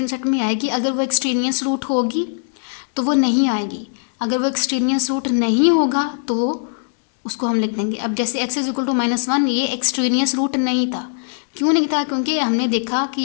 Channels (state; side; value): silent; right; digital silence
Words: सेट में आएगी। अगर वो एक्सट्रेनियस रूट होगी तो वो नहीं आएगी, अगर वो एक्सट्रेनियस रूट नहीं होगा तो उसको हम लिख देंगे। अब जैसे x इज इक्वल टू -1, ये एक्सट्रेनियस रूट नहीं था। क्यों नहीं था? क्योंकि हमने देखा कि